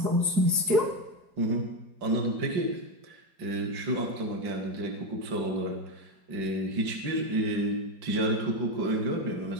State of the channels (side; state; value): left; late; 4.7 ms